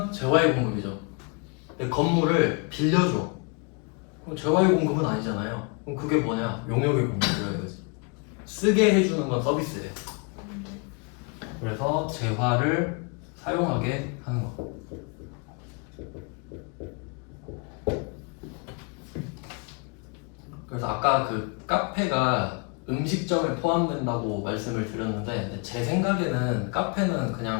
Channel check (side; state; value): right; quieter; 34.1 dB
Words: 재화의 공급이죠. 근데 건물을 빌려줘. 그럼 재화의 공급은 아니잖아요. 그럼 그게 뭐냐? 용역의 공급이라 이거지. 쓰게 해주는 건 서비스예요. 그래서 재화를 사용하게 하는 거. 그래서 아까 그 카페가 음식점에 포함된다고 말씀을 드렸는데 제 생각에는 카페는